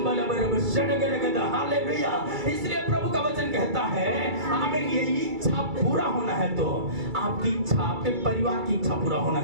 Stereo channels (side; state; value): left; late; 2.3 ms